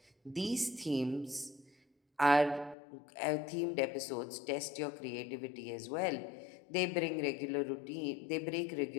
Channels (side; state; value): right; drops out; at 2.8 s